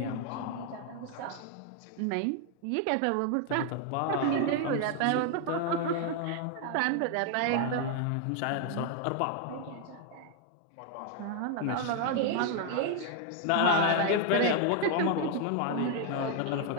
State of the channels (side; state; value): both; different; correlation 0.00